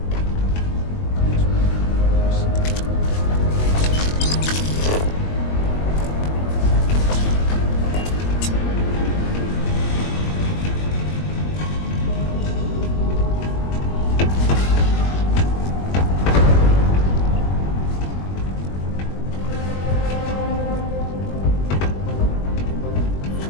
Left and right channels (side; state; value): right; late; 21 ms